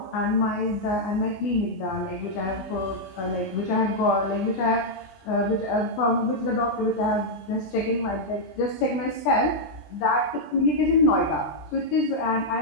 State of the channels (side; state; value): right; late; 20 ms